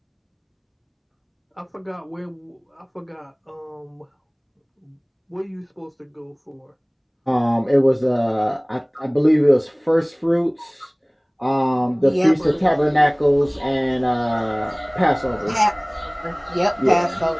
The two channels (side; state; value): both; identical; correlation 1.00